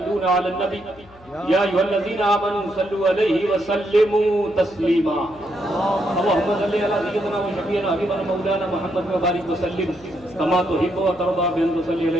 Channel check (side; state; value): left; noise; hum, 25 dB below the sound